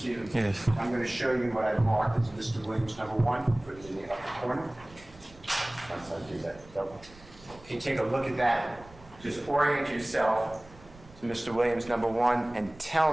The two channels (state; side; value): noise; right; rumble, 23 dB below the sound